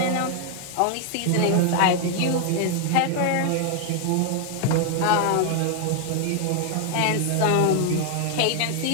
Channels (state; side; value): different; both; correlation 0.00